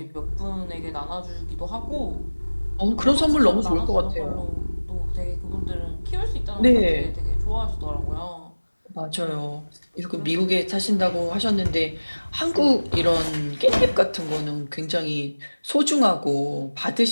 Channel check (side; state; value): both; inverted; correlation -1.00